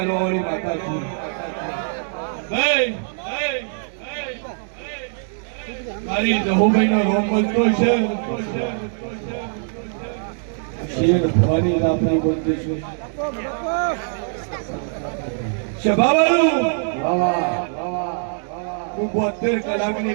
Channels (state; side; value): silent; left; digital silence